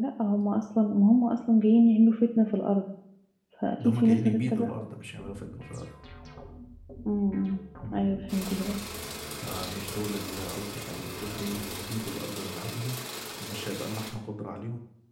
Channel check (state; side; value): identical; both; correlation 1.00